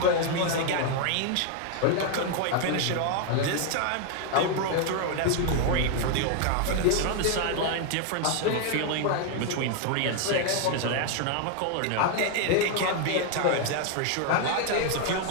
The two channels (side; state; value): both; different; correlation 0.01